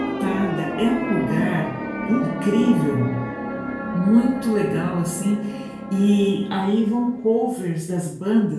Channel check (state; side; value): identical; both; correlation 1.00